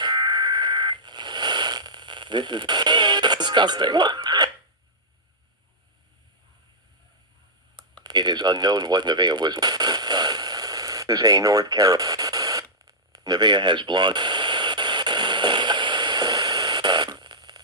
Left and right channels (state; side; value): normal; both; correlation -0.11